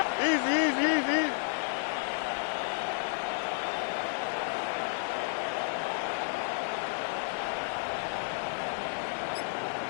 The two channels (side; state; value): right; silent; 57 dB below the other